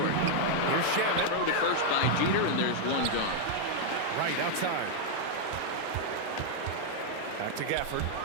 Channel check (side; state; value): both; different; correlation 0.00